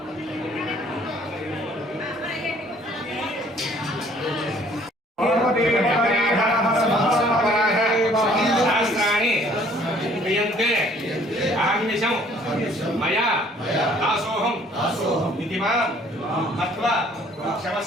मया दासोहम नीतिमान तत्वा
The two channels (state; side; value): normal; both; correlation 0.58